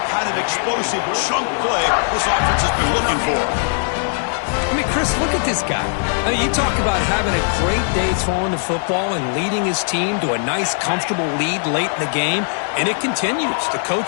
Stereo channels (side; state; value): right; silent; digital silence